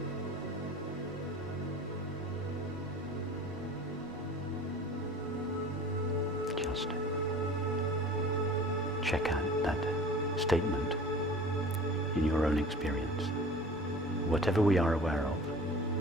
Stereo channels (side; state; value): both; normal; correlation 0.42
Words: Just check out that statement in your own experience. Whatever we are aware of,